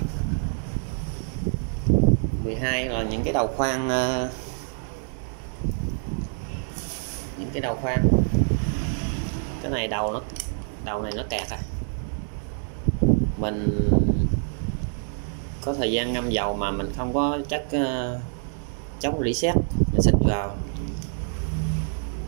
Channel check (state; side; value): silent; left; digital silence